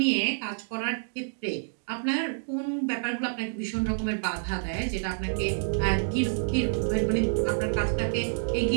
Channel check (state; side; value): silent; left; digital silence